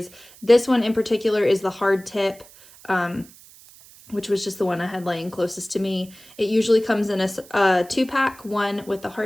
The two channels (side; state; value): right; noise; hiss, 23 dB below the sound